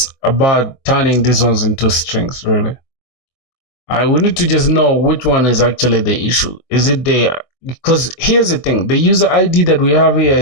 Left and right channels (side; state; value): right; late; 24 ms